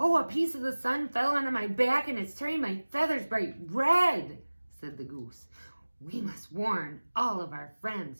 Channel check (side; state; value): both; inverted; correlation -1.00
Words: a piece of the sun fell onto my back and it's turning my feathers bright red," said the goose. "We must warn all of our